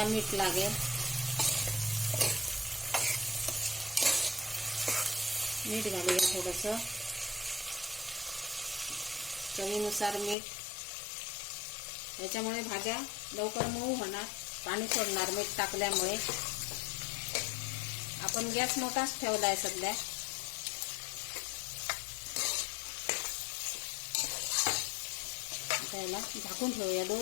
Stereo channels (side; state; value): right; drops out; at 10.4 s